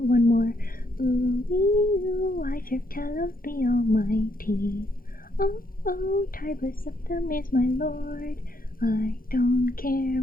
more. Ooh, ooh, I serve Talos the Almighty. Oh, oh, Tiber Septim is my lord. I don't care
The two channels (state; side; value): late; right; 0.42 ms